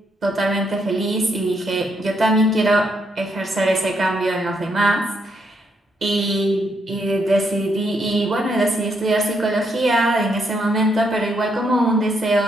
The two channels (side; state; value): both; normal; correlation 0.76